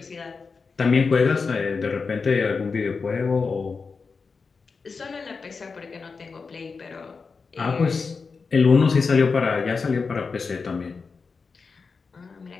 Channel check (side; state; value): right; quieter; 4.8 dB